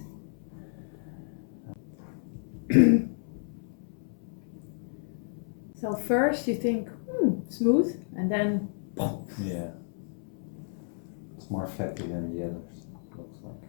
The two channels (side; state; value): right; silent; 57 dB below the other